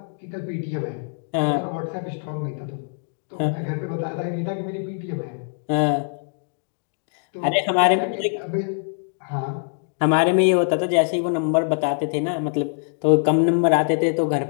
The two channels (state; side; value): silent; right; digital silence